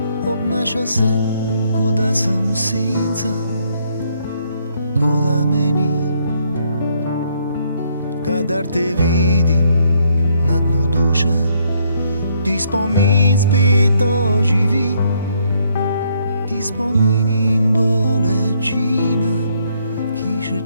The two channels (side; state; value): both; inverted; correlation -0.71